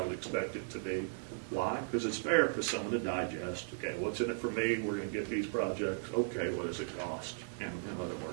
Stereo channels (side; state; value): left; silent; digital silence